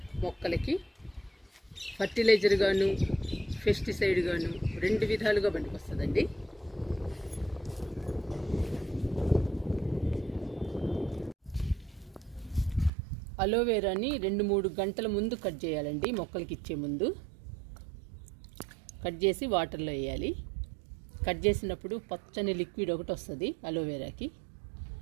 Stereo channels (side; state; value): left; drops out; at 12.9 s